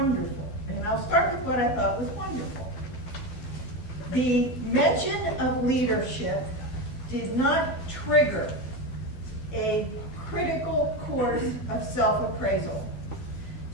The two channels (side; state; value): right; late; 12 ms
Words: And I'll start with what I thought was wonderful. The mention of leadership did not trigger a critical course of self-appraisal.